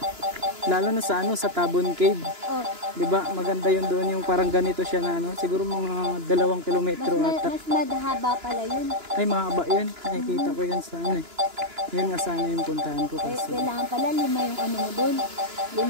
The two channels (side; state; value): left; late; 2.9 ms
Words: Lalo na sa ano, sa Tabon Cave. Oh. 'Di ba? Maganda 'yun doon, yung parang ganito siya na ano, siguro mga 2 kilometro ata. Mas madhaba pala yun. Ay, mahaba 'yun. Nakikita ko 'yan sa ano eh. Yun nga sana yung puntahan ko Eh, kasi. kailangan pala 5 yung ano mo doon.